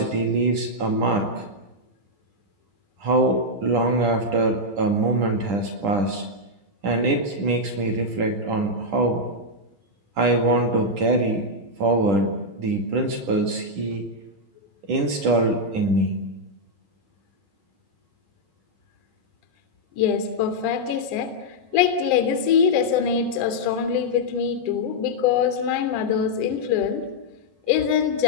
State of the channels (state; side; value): late; left; 10 ms